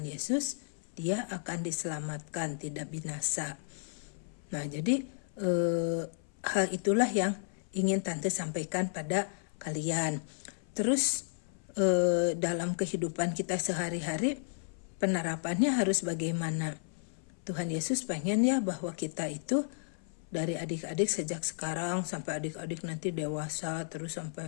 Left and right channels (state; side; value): silent; right; 56 dB below the other